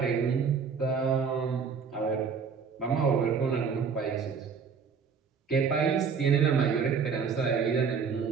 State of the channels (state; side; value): quieter; left; 6.0 dB